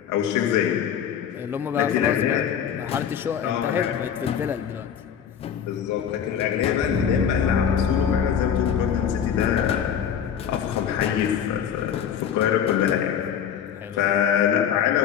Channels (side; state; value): right; quieter; 8.6 dB